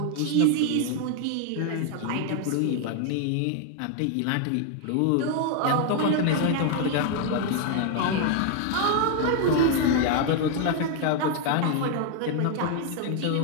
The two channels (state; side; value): different; both; correlation 0.00